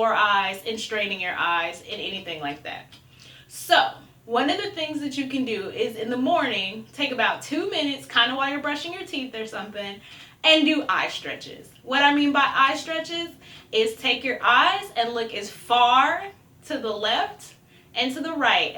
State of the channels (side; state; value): both; identical; correlation 1.00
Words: eyes and straining your eyes and anything like that. So, one of the things that you can do is in the morning, take about 2 minutes, kind of while you're brushing your teeth or something, and do eye stretches. What I mean by eye stretches is take your eyes and look as far to the left and to the right